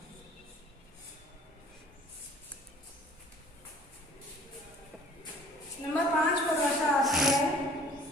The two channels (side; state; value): both; normal; correlation 0.50